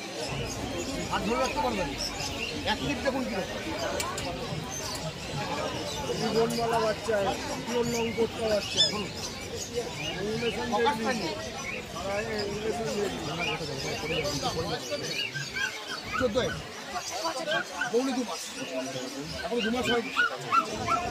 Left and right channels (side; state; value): both; identical; correlation 1.00